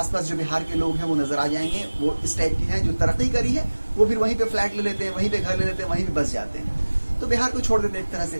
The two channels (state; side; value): inverted; both; correlation -1.00